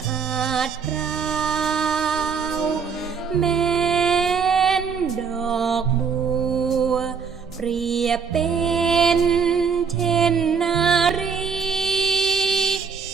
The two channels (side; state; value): left; quieter; 6.0 dB